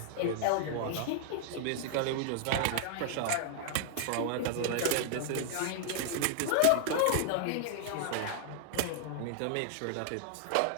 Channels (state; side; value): different; both; correlation 0.00